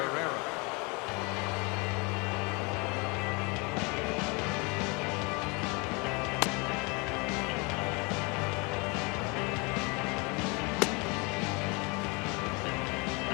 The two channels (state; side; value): quieter; right; 29.3 dB